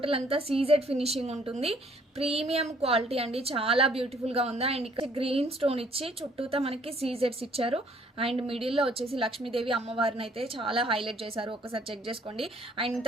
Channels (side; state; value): both; normal; correlation 0.62